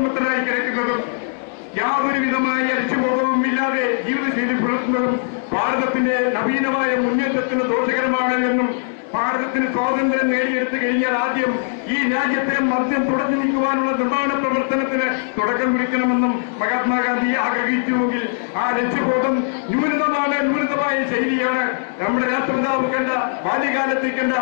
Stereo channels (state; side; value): silent; right; digital silence